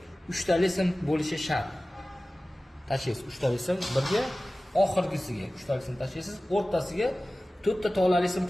3 tali sim bo'lishi shart. Tashlaysiz 3 tali sim birga, oxirgisiga 3 tali sim tashlaysiz, o'rtasiga 4 ta tolali sim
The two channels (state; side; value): normal; both; correlation 0.97